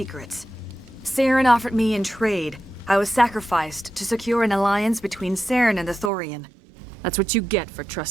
Saren offered me in trade. I was sacrificed to secure an alliance between Saren and the Thorian. That's what you get for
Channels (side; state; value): left; drops out; at 6.1 s